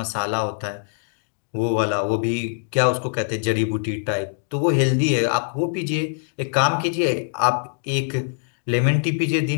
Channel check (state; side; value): silent; right; digital silence